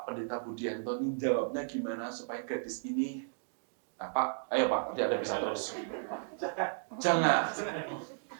Pendeta Budianto ini jawabnya gimana supaya gadis ini, nah Pak, ayo Pak, nanti Anda bisa terus. Jangan.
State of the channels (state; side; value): silent; left; digital silence